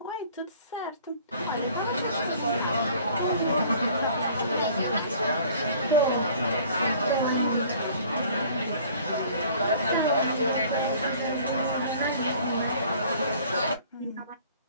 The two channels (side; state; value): both; inverted; correlation -0.52